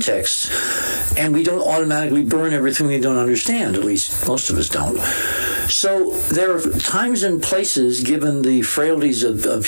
and we don't automatically burn everything we don't understand. At least most of us don't. So there are times and places, given the frailties of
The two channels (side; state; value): both; inverted; correlation -1.00